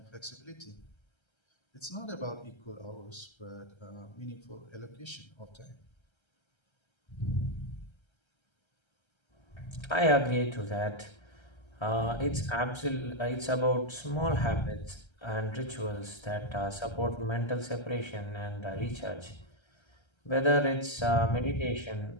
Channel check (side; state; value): right; late; 1.3 ms